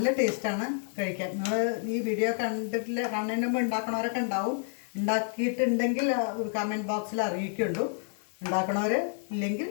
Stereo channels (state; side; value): silent; right; 58 dB below the other